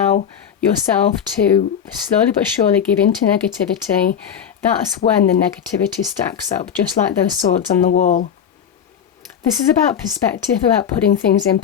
yourself to slowly but surely give into negativity, that's when the negativity stacks up, just like those swords on the wall. This is about perspective, about putting things in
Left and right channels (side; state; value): right; quieter; 8.3 dB